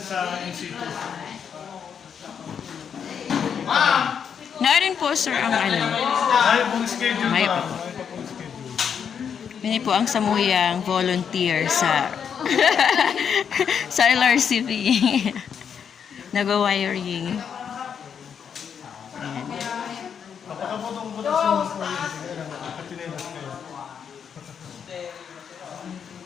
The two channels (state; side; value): quieter; right; 7.4 dB